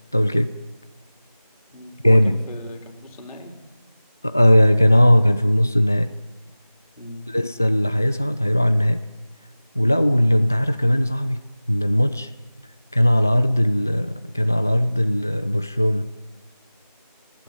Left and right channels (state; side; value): inverted; both; correlation -0.98